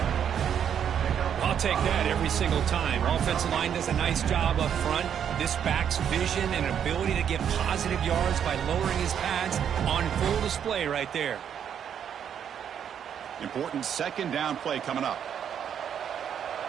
I'll take that every single time. Offensive line does a nice job up front. This back's vision and ability to get positive yards by lowering his pads on full display right there. Important 2nd down play coming up.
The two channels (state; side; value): quieter; left; 8.6 dB